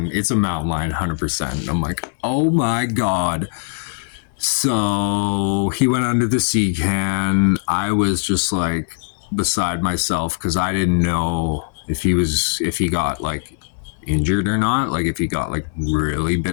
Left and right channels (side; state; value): right; silent; digital silence